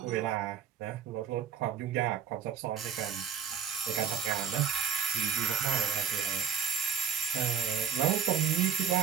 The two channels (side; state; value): left; quieter; 6.9 dB